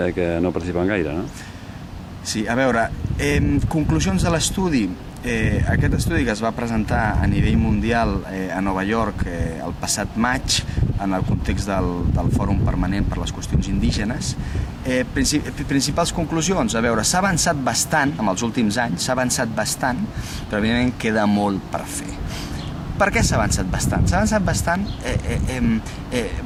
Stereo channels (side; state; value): both; identical; correlation 1.00